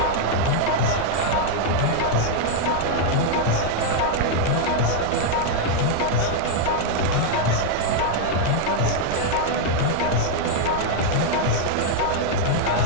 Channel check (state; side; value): different; both; correlation 0.00